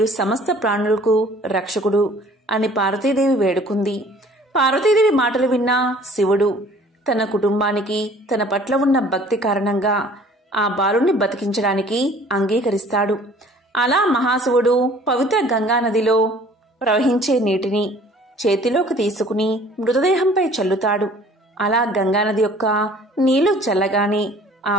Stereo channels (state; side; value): normal; both; correlation 0.52